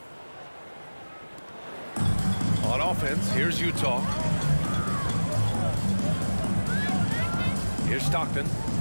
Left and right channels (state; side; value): inverted; both; correlation -1.00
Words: On offense, here's Utah. Here's Stockton.